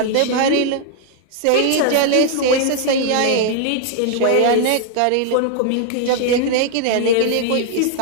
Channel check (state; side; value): different; both; correlation 0.00